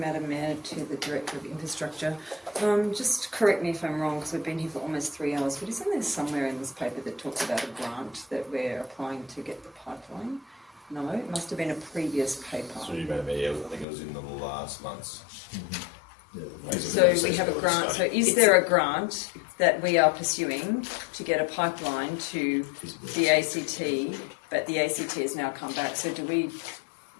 Mayor, to the Director of Infrastructure. Just correct me if I'm wrong, because we've been here for almost 3 hours, but isn't there somewhere in this paper that talks about a grant that we're applying to get the pipeline? No, it must have been a previous paper. Through you, Madam Mayor, I think it was in the last months. So we have a grant. So is there a grant that we are pursuing to get a pipeline to the ACT, but the ACT has now come back? So do we?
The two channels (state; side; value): drops out; right; at 13.9 s